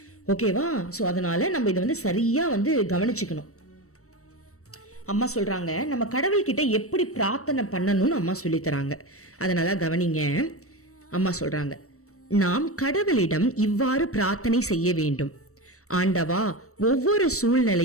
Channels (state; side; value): late; right; 0.65 ms